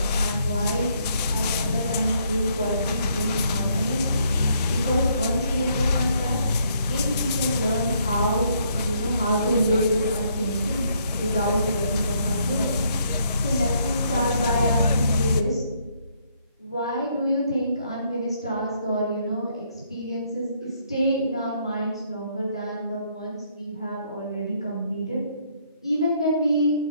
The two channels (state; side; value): inverted; both; correlation -0.70